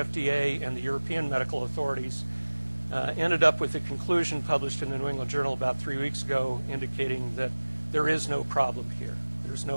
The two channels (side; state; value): both; inverted; correlation -1.00